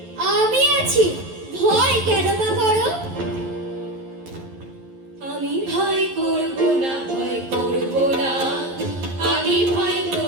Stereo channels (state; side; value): late; left; 11 ms